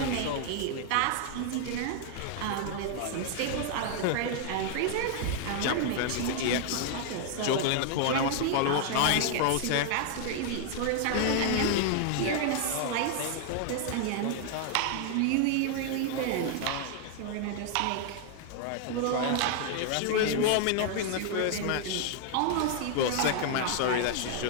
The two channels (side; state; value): both; different; correlation 0.00